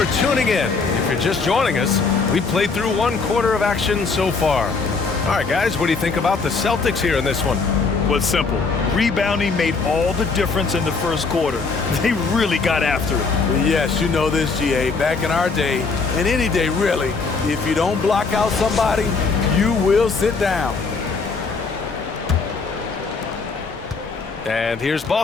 tuning in. If you're just joining us, we've played through 1 quarter of action so far. All right, guys, what do you think about the Celtics here in this one? Well, it's simple. Rebounding made all the difference in the first quarter. They really got after it. Yes, you know this, GA. Back in our day, and any day really, if you don't block out somebody, you will sit down. And here's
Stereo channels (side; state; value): right; quieter; 4.5 dB